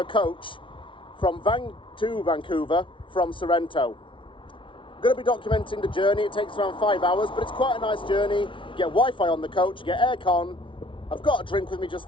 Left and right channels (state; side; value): late; right; 0.25 ms